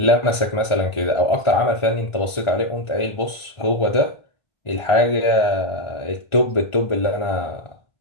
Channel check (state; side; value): late; right; 1.4 ms